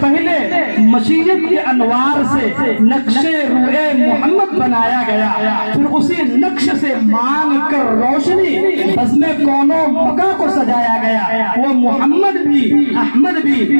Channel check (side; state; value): both; inverted; correlation -1.00